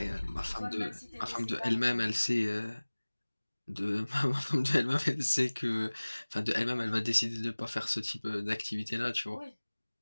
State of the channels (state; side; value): inverted; both; correlation -1.00